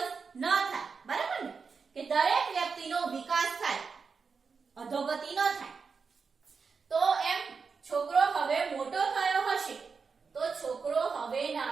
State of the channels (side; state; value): left; quieter; 5.2 dB